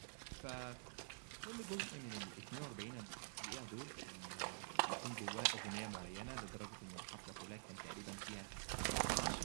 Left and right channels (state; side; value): silent; left; digital silence